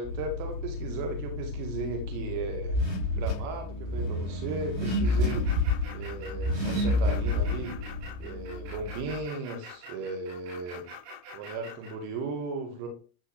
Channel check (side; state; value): left; late; 34 ms